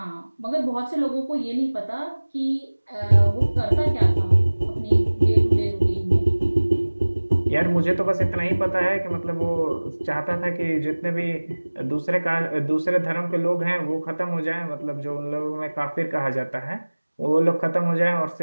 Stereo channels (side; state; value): both; inverted; correlation -1.00